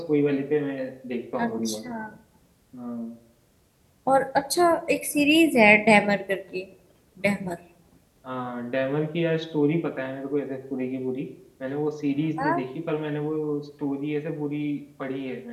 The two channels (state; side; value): identical; both; correlation 1.00